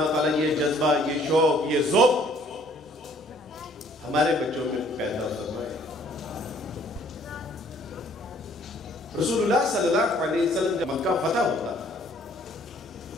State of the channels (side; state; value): both; normal; correlation 0.60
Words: تعالیٰ یہ جذبہ، یہ شوق، یہ ذوق ہمارے بچوں میں پیدا فرمائے۔ رسول اللہ صلی اللہ علیہ وسلم جب مکہ فتح ہوتا